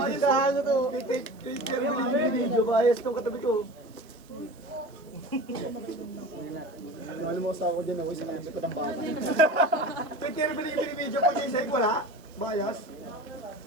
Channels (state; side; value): noise; right; hiss, 29 dB below the sound